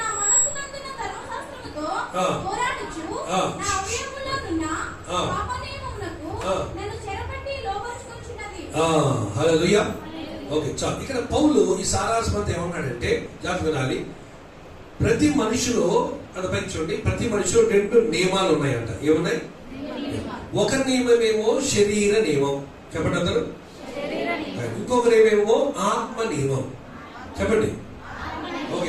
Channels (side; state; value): both; identical; correlation 1.00